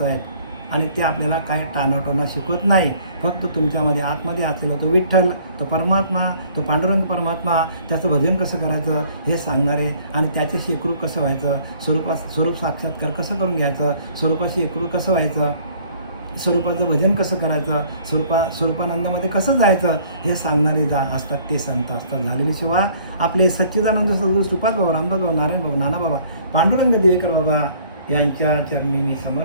आहेत. आणि ते आपल्याला काय टाणाटोना शिकवत नाही. फक्त तुमच्यामध्ये आतमध्ये असलेला तो विठ्ठल, तो परमात्मा, तो पांडुरंग परमात्मा, त्याचं भजन कसं करायचं हे सांगणारे आणि त्याच्याशी एकरूप कसं व्हायचं, स्वरूप साक्षात्कार कसं करून घ्यायचं, स्वरूपाशी एकरूप कसं व्हायचं, स्वरूपाचं भजन कसं करायचं, स्वरूपानंदामध्ये कसं जायचं हे सांगणारे असतात ते संत असतात. झालेली सेवा आपले सच्चिदानंद सद्गुरू श्रीपाद बाबा, रामदास बाबा, नारायण बाबा, नाना बाबा, पांडुरंग दिवेकर बाबा यांच्या चरणी मी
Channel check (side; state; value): both; inverted; correlation -0.57